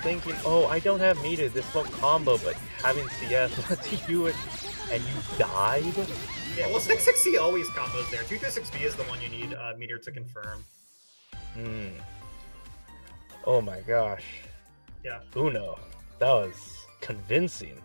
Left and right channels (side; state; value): both; inverted; correlation -1.00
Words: oh, I don't have meter, this won't combo, but having CS lets you do it, and you died? Yeah, well, 660 always combos there. 236B is the one you need meter to confirm. Hmm. Oh my gosh. Yeah. Uno. That was convincing.